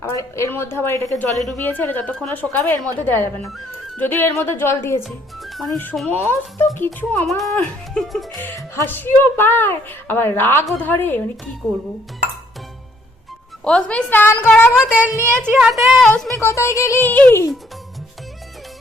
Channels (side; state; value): both; normal; correlation 0.66